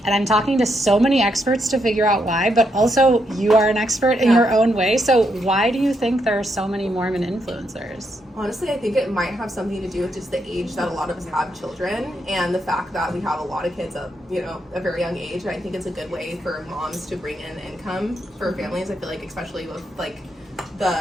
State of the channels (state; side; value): normal; both; correlation 0.79